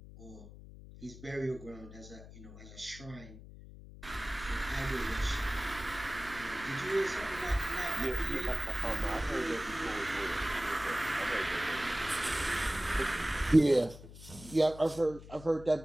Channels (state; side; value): noise; left; hum, 16 dB below the sound